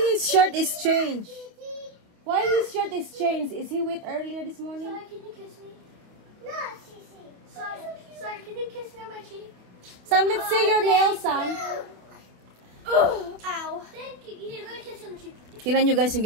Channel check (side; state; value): left; late; 28 ms